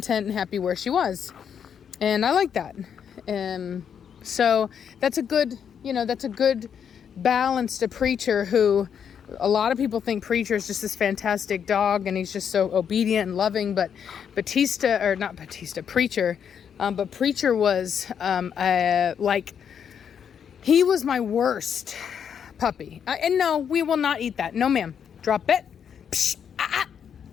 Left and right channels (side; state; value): right; quieter; 7.9 dB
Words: and happy where she was. And I like that. So that's a good balance to Preacher, who a lot of people think Preacher is just this fantastic dog and he's just so obedient and loving, but Preacher, but Preacher was he was my worst puppy. And no, we will not eat that. No, ma'am. Drop it. Psh,